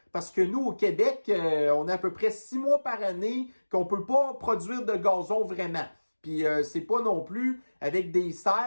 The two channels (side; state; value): both; inverted; correlation -1.00